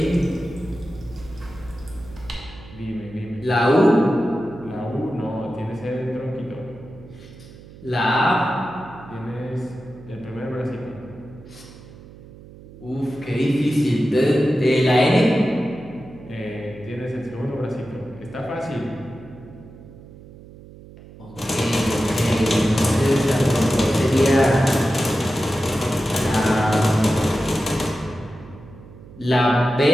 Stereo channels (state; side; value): noise; right; hum, 19 dB below the sound